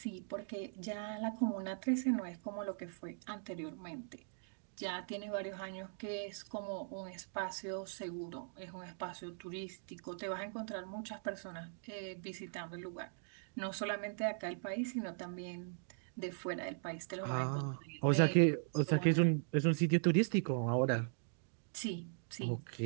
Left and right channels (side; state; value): left; silent; digital silence